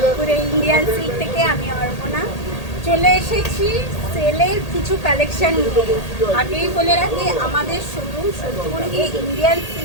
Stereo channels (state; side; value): late; right; 1.8 ms